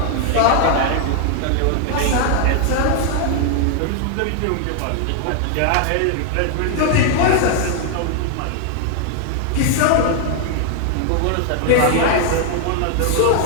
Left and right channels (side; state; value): both; different; correlation 0.00